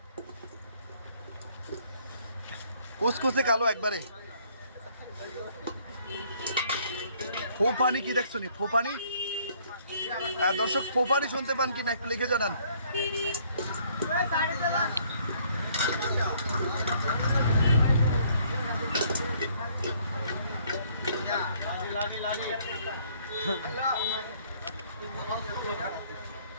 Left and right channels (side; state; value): both; inverted; correlation -0.63